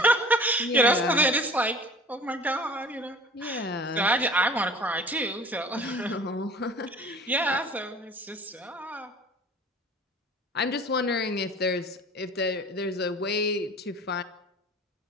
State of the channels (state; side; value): normal; both; correlation 0.45